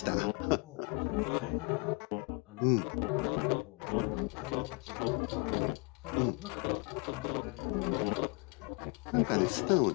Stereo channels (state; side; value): quieter; right; 30.8 dB